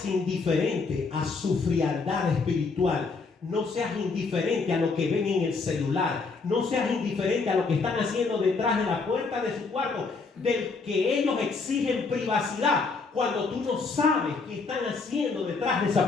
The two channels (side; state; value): right; quieter; 4.4 dB